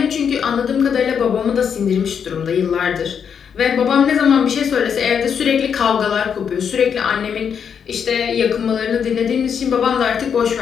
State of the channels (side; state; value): right; quieter; 7.3 dB